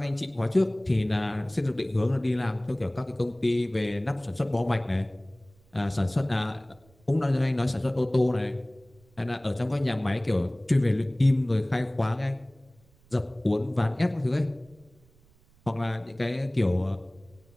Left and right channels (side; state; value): right; noise; rumble, 30 dB below the sound